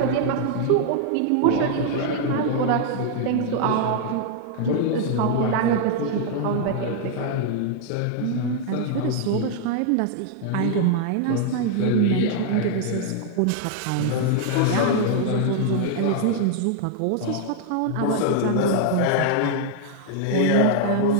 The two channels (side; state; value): both; different; correlation 0.00